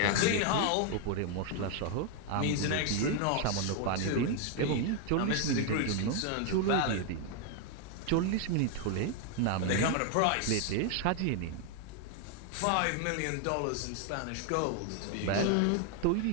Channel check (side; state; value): both; different; correlation 0.01